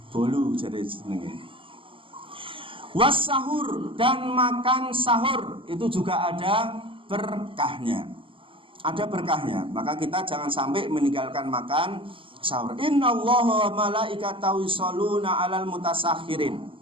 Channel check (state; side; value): late; left; 0.25 ms